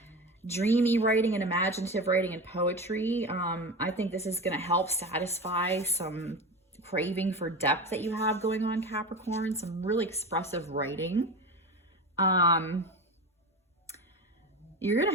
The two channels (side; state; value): both; normal; correlation 0.27